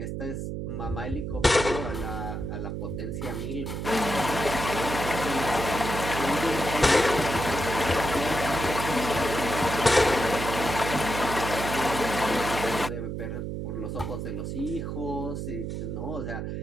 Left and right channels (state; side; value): noise; right; hum, 4 dB below the sound